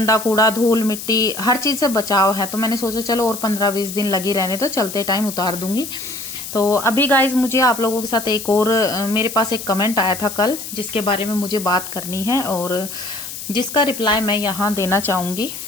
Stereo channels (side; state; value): left; noise; hiss, 9 dB below the sound